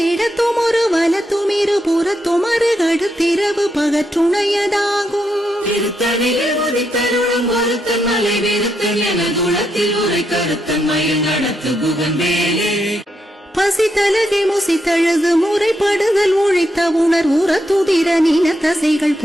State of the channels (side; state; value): both; normal; correlation 0.81